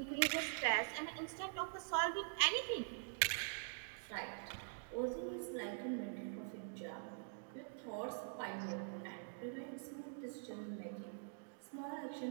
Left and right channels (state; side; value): silent; left; digital silence